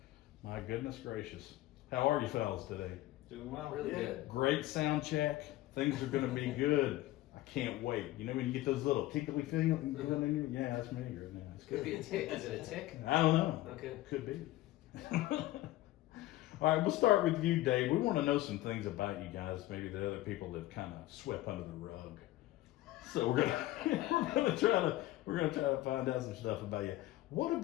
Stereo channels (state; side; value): quieter; right; 16.4 dB